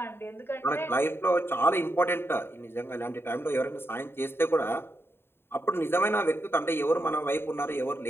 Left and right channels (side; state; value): right; late; 0.11 ms